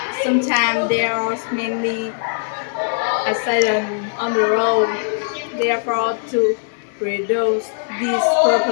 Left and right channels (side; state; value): right; silent; 61 dB below the other